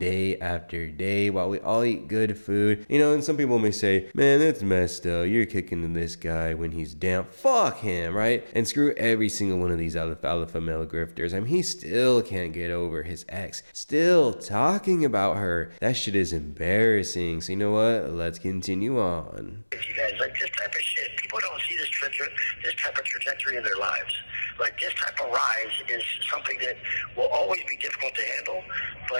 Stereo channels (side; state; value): both; inverted; correlation -1.00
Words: after day while we all eat good food. You know, and some people may say, man, that's messed up. You're kicking this guy when he's down. Fuck him, right? And screw every single one of these alpha male grifters. I mean, he still can't get over his ex. Still talking about her. That shit is embarrassing. So you know what? Let's continue on. You guys, like, this type of shit, people don't see this type of trajectory in their lives. Like, this type of rise is something that will always be difficult to handle,